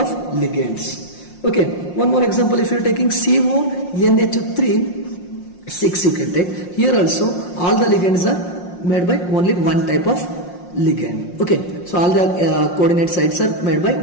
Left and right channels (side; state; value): right; late; 5.6 ms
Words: ligands. Okay, one more example, if you are taking CONH3 6 you can take. Here also all the ligands are made by only one type of ligand. Okay, so all the coordinate sites are made by